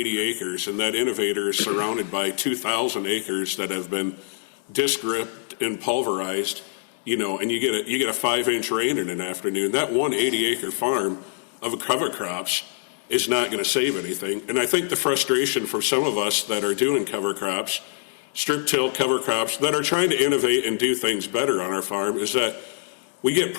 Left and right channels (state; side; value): silent; right; digital silence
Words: acres, and that innovator is surrounded by 2,000 acres that have been disc ripped and pulverized, and you get a 5-inch rain in an afternoon, that one 80-acre farm of cover crops is not going to save anything. And I think the frustration for some of us that are doing cover crops, strip till cover crops, that are trying to innovate and do things better on our farm is that we get